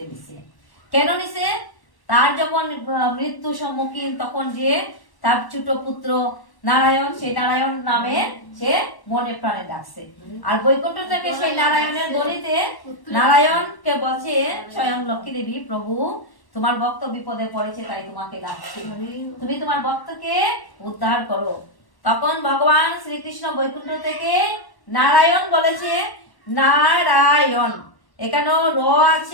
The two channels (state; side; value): late; right; 1.1 ms